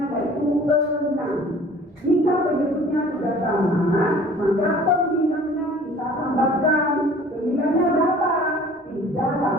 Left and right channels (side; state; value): both; normal; correlation 0.48